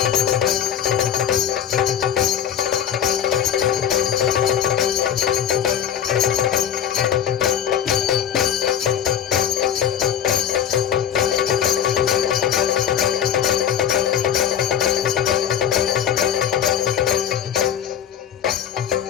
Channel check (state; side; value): quieter; right; 9.2 dB